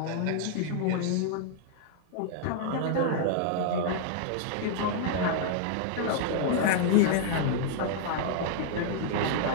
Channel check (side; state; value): both; different; correlation -0.01